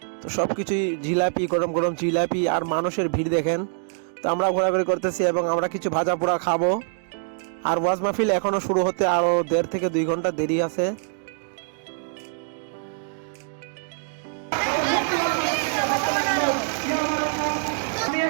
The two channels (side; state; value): left; silent; digital silence